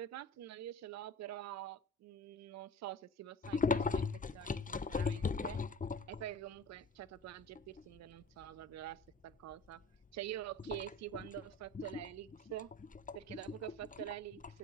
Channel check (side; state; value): both; normal; correlation 0.39